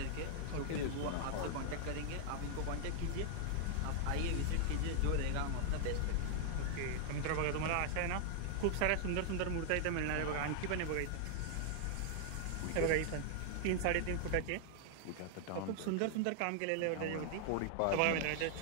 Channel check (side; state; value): both; different; correlation 0.00